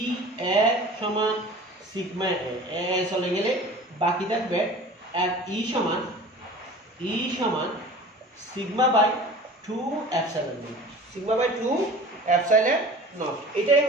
A সমান সিগমা A, চলে গেলে বাকি থাকবে E সমান sigma by 2 epsilon naught, sigma by 2 epsilon naught. এটাই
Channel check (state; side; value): normal; both; correlation 0.41